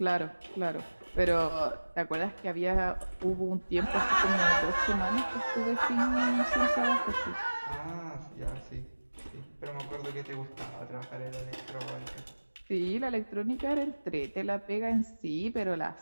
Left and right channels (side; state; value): both; inverted; correlation -1.00